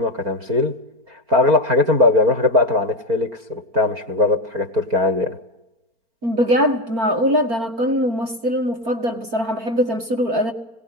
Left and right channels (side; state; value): left; late; 4.4 ms